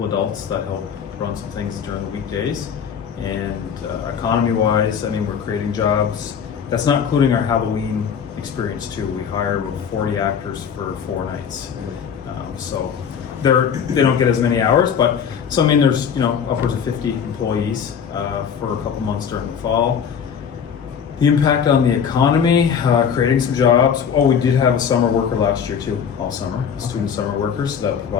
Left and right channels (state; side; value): quieter; right; 7.4 dB